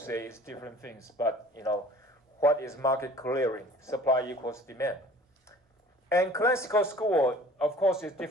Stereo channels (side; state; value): both; normal; correlation 0.48